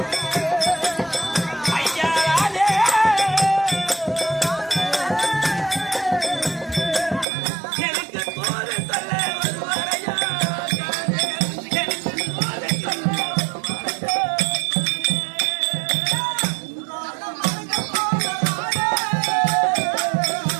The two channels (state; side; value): drops out; left; at 7.2 s